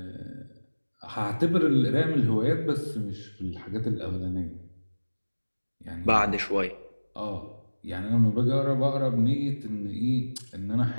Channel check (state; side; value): inverted; both; correlation -1.00